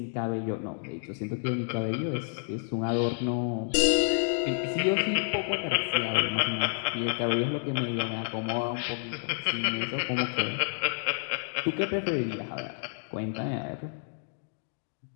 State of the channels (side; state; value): right; silent; digital silence